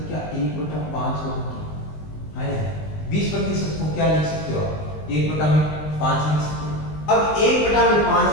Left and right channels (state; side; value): late; right; 19 ms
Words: क्या 1/5 होगा? हाँ, 20% को क्या लिख सकते हो आप, 1/5 लिख सकते हो। अब 1/5